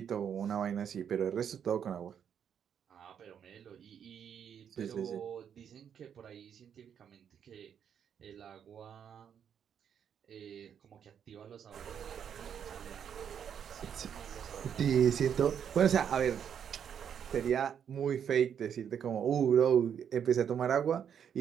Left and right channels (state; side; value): quieter; left; 8.3 dB